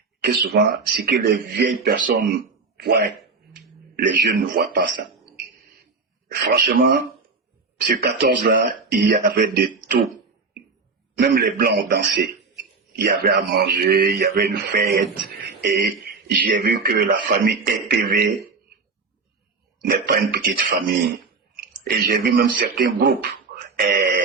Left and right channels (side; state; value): left; quieter; 4.4 dB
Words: que souvent, ce que les vieilles personnes voient, les jeunes ne voient pas ça. Franchement, ce 14-là, il y avait de tout. Même les Blancs ont dansé. Il y avait à manger, il y avait une fête. Et j'ai vu que la famille EPV n'est pas une petite famille. Et j'ai vu même certains groupes